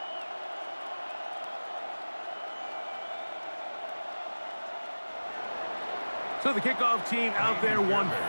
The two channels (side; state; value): both; inverted; correlation -1.00